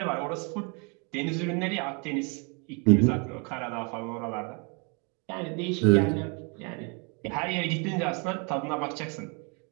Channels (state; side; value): quieter; left; 33.7 dB